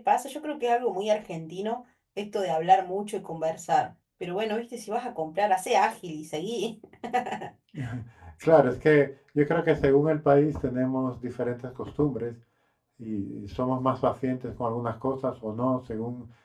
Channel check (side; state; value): both; identical; correlation 1.00